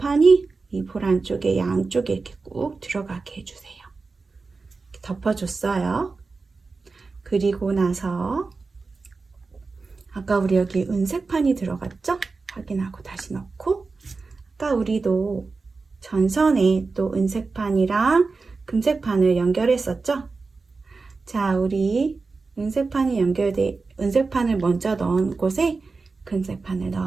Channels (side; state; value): left; quieter; 4.1 dB